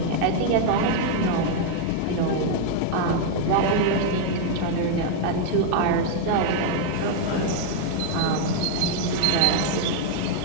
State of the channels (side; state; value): both; different; correlation 0.00